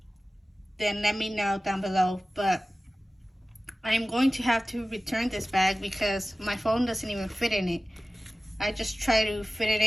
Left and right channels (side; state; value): both; normal; correlation 0.96